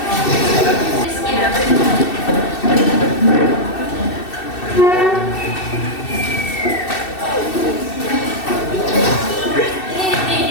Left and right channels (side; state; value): right; late; 2.7 ms